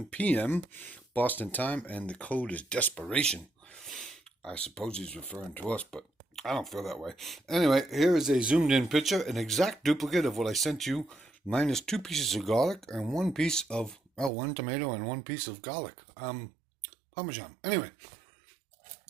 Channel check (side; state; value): left; drops out; at 14.3 s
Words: p.m. Boston time, and the code is desperation. I suppose he's referring to us, but I don't feel that way. Anyway, here is a zoomed-in picture, an exact duplicate of what I sent you, minus 2 pieces of garlic and one tomato and 1 piece of garlic. Parmesan. Anyway,